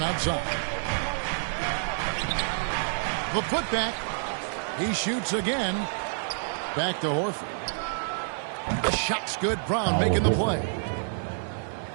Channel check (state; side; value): silent; left; digital silence